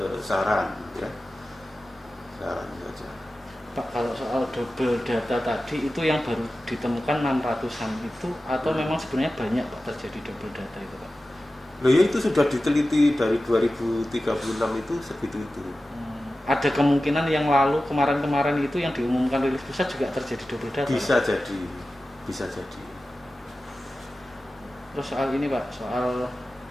saran ya, saran saja. Pak, kalau soal double data tadi itu yang baru ditemukan 600-an itu atau memang sebenarnya banyak Pak terjadi double data itu Pak? Loh ya, itu sudah diteliti dari 2036 itu segitu itu. Ada kemungkinan yang lalu kemarin-kemarin itu yang diumumkan rilis pusat juga terjadi double data? Bisa Pak? jadi, bisa jadi. Terus soal ini Pak, soal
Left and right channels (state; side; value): normal; both; correlation 0.94